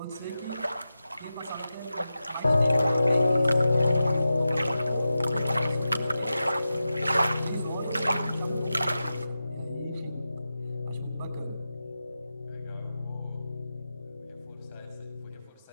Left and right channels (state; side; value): inverted; both; correlation -0.92